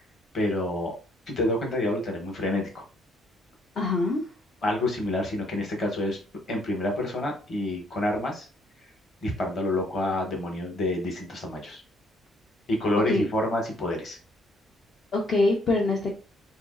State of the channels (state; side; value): normal; both; correlation 0.66